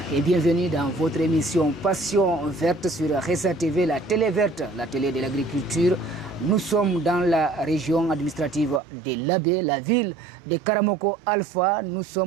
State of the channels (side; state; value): left; drops out; at 8.8 s